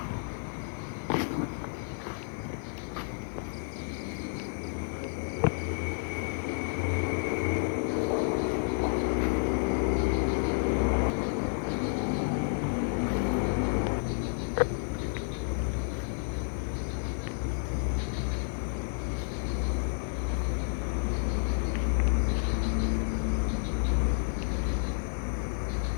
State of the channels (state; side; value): silent; right; 57 dB below the other